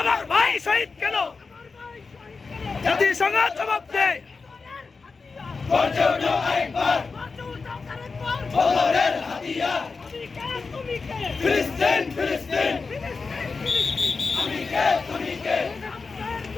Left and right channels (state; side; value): quieter; right; 4.5 dB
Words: ভাই শহীদ কেন? জাতিসংঘ জবাব দেয়। বদরের হাতিয়ার ফিলিস্তিন ফিলিস্তিন আমি কে তুমি কে